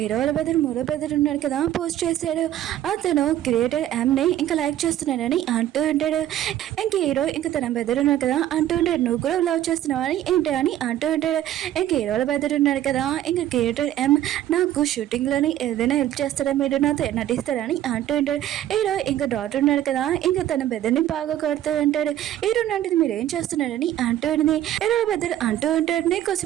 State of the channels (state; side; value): quieter; left; 12.4 dB